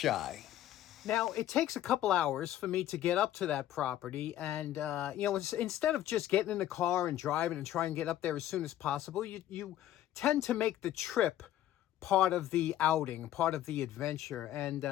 Now, it takes a couple hours for me to get up to that property. And, you know, instead of just getting in the car and driving and trying to get up there as soon as possible, you tend to make the trip part of the outing, part of the adventure.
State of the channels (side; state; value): right; quieter; 12.7 dB